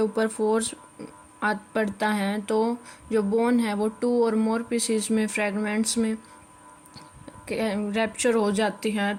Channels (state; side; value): identical; both; correlation 1.00